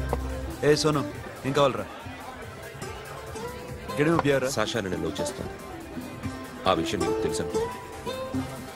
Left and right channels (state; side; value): identical; both; correlation 1.00